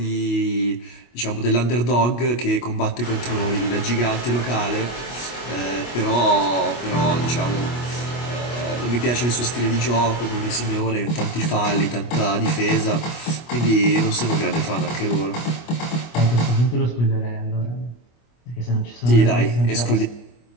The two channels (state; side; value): late; right; 25 ms